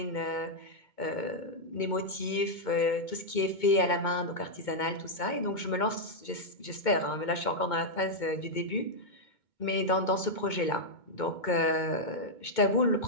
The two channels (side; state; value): right; late; 2.2 ms